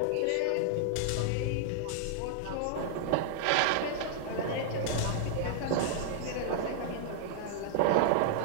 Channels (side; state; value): both; different; correlation -0.01